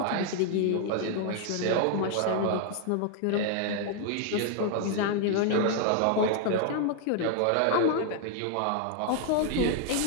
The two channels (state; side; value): different; both; correlation 0.00